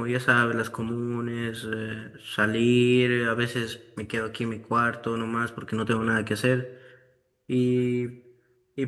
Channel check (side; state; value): both; identical; correlation 1.00